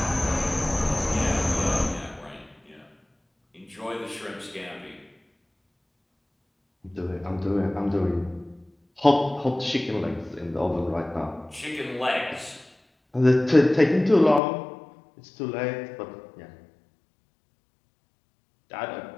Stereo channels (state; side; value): drops out; right; at 14.4 s